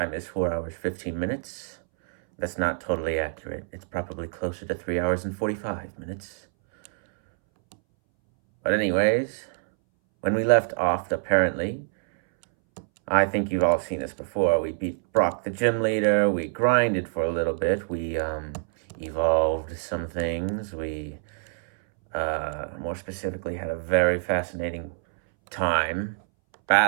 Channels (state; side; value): silent; left; 61 dB below the other